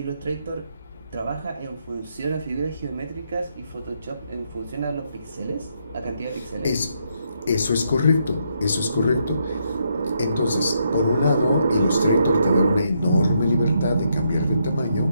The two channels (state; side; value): inverted; both; correlation -0.77